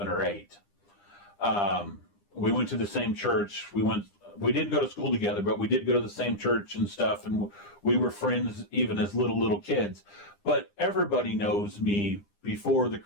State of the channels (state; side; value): late; right; 9.9 ms